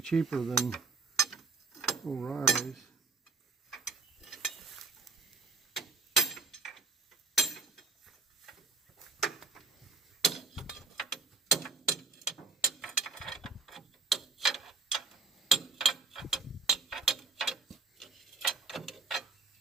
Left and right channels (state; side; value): quieter; left; 4.5 dB